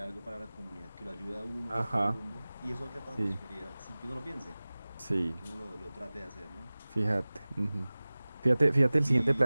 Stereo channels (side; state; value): both; inverted; correlation -0.99